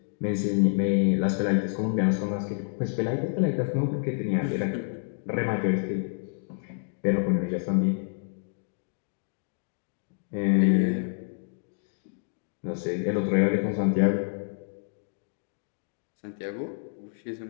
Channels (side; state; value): right; silent; digital silence